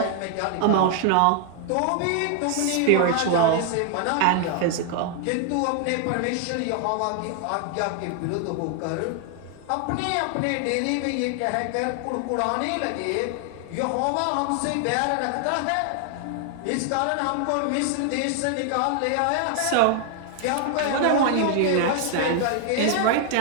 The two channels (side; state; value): both; different; correlation 0.00